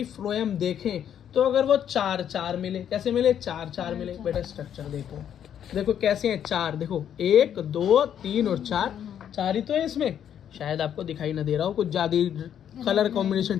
फ्लोएम देखें तो अगर वो चार चार मिले, कैसे मिले? चार चार मिले बेटा। स्ट्रक्चर देखो, देखो कैसे हैं चार। देखो 1 2 3 और 4, चार ही तो है इसमें। शायद आपको दिखाई ना दे रहा हो, कुछ ज्यादा कलर कॉम्बिनेशन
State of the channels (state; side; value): quieter; right; 9.4 dB